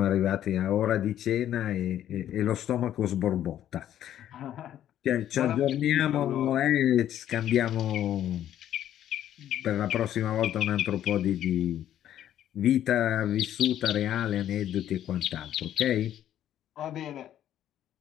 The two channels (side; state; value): right; quieter; 11.3 dB